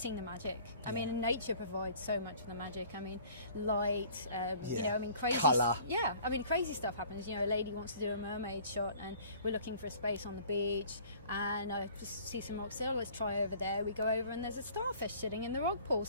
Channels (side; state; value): both; inverted; correlation -0.51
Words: the magic. I mean, nature provides so much of the magic. I mean, light, you know, I mean, crazy... Colour. Yeah, I mean, crazy stuff happens. You know, a lady wants to do a mermaid shot and we're looking for a space on the beach, and I just see some rocks. So let's try over there. We go over and there's a starfish sitting in the rock pool